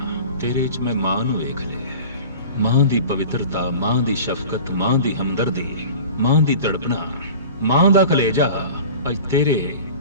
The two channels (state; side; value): inverted; both; correlation -0.39